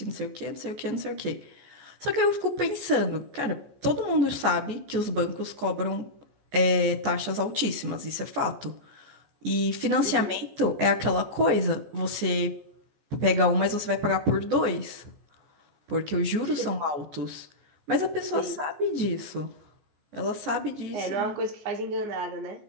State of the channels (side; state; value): left; late; 14 ms